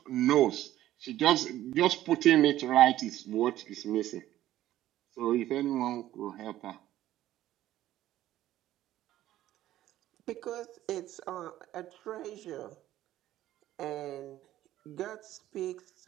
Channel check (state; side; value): quieter; left; 13.8 dB